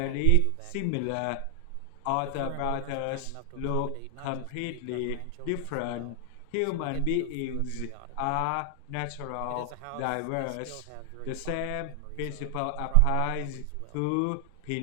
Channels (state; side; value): different; both; correlation 0.00